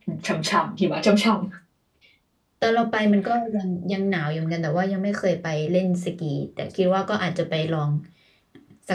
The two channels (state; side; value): identical; both; correlation 1.00